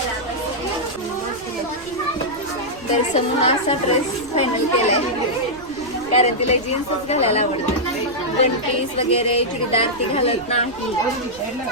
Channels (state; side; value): noise; right; rumble, 21 dB below the sound